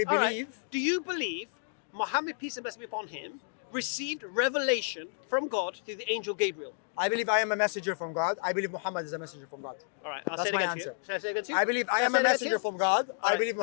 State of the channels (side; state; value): right; silent; digital silence